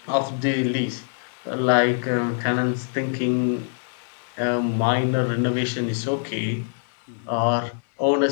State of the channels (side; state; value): right; silent; digital silence